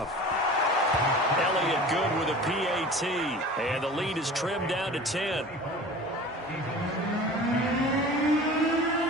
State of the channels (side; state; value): both; normal; correlation 0.39